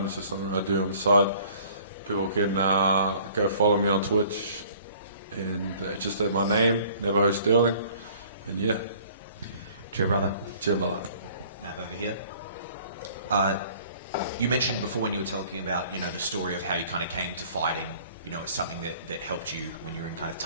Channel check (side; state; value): both; inverted; correlation -0.54